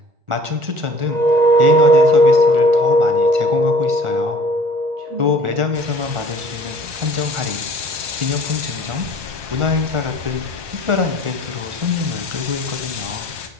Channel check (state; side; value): late; left; 1.2 ms